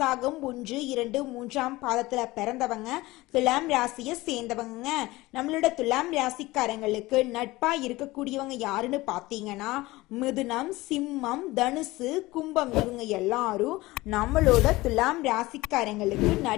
1, 2, 3ஆம் பாதத்துல பிறந்தவங்க துலாம் ராசியை சேர்ந்தவங்க. நம்மளோட துலாம் ராசிக்காரங்களுக்கு நட்பா இருக்கக்கூடியவங்க யாருன்னு பாத்தீங்கன்னா மிதுனம், சிம்மம், தனுசு, கும்பம். இவங்க எல்லாரும் நம்மளோட துலாம் ராசிக்காரங்களுக்கு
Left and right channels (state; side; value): quieter; right; 19.7 dB